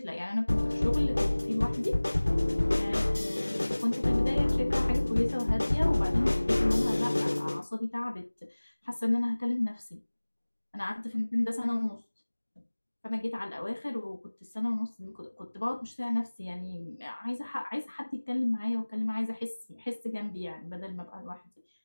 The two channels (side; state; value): both; inverted; correlation -1.00